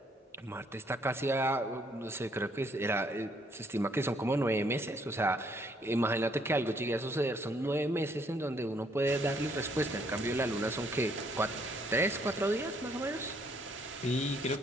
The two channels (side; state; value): both; normal; correlation 0.68